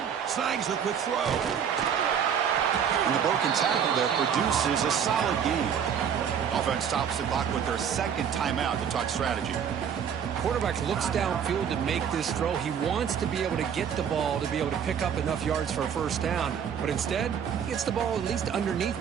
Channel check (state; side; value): quieter; left; 8.0 dB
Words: Snags the quick throw. And the broken tackle there produces a solid gain. Offense stops the clock with their second timeout to talk strategy. Quarterback looks downfield to make this throw. He wants to be able to get the ball to be able to pick up enough yards for a first down. But instead, he gets the ball at least underneath